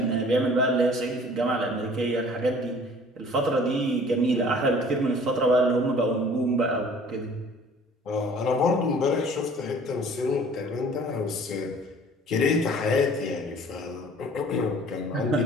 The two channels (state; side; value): normal; both; correlation 0.51